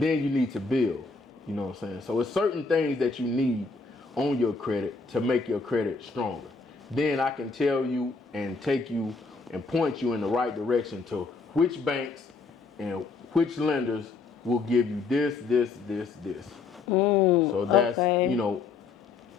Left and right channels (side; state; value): right; quieter; 4.3 dB